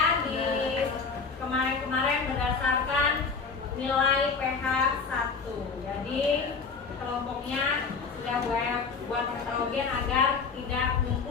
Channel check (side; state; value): right; quieter; 5.0 dB